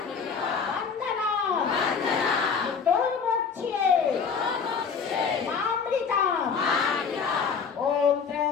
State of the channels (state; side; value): quieter; right; 5.9 dB